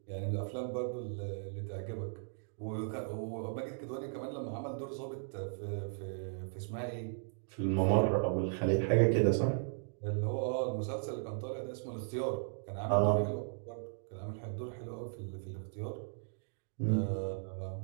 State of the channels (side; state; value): left; silent; digital silence